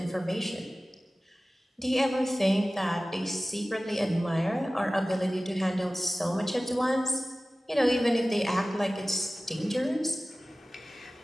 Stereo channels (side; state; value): both; normal; correlation 0.97